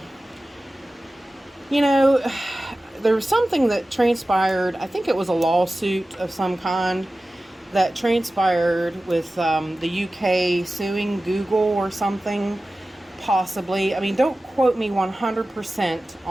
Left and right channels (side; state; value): both; normal; correlation 0.96